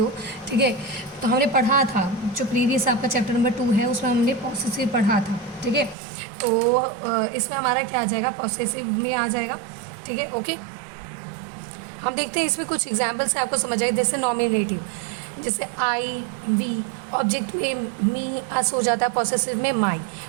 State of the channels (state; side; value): drops out; left; at 6.0 s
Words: ठीक है। तो हमने पढ़ा था जो प्रीवियस आपका चैप्टर नंबर 2 है उसमें हमने पॉसेसिव पढ़ा था, ठीक है। तो इसमें हमारा क्या आ जाएगा, पॉसेसिव में आ जाएगा, ठीक है, ओके। हम देखते हैं इसमें कुछ एग्जाम्पल्स से आपको समझ आए। जैसे नॉमिनेटिव, जैसे आई, वी, ऑब्जेक्ट में मी, अस हो जाता है, पॉसेसिव में माई,